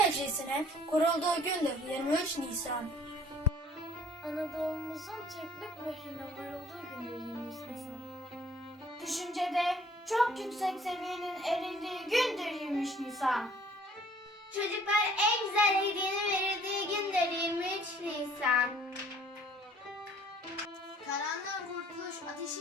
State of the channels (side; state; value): both; normal; correlation 0.56